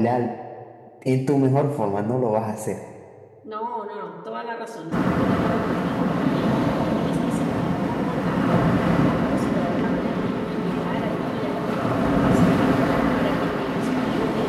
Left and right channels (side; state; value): both; identical; correlation 1.00